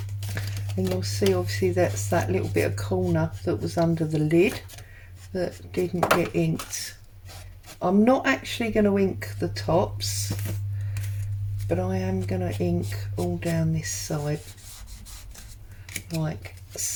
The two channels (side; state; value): both; identical; correlation 1.00